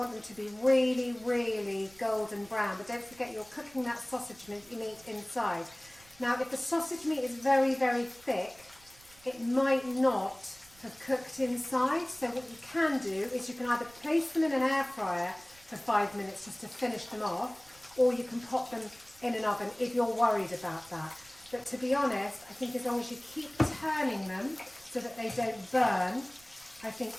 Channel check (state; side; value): noise; right; rumble, 25 dB below the sound